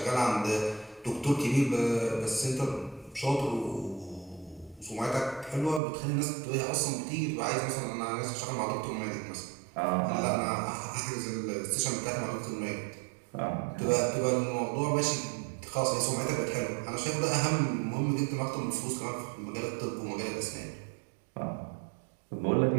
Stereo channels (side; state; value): left; drops out; at 5.8 s